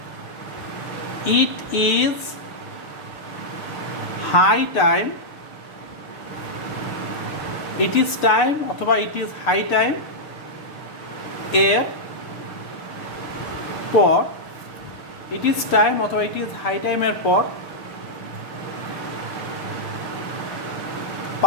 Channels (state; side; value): late; right; 6.8 ms